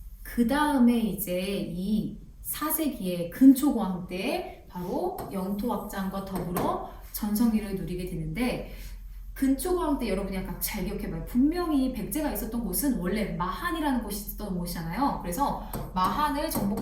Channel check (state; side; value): identical; both; correlation 1.00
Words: 그 다음에 이제 이 4세기의 근초고왕 때 바로 영토 확장과 더불어 전성기를 누리게 되는데, 근초고랑 때 여러분이 약간 잘 기억해봐요. 분명히 백제가 있었던 곳은 원래 마한이라는 곳이 있었던 곳이잖아요. 그래서 마한을